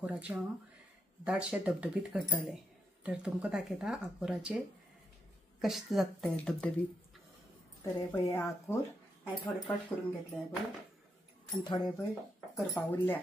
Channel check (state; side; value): normal; both; correlation 0.81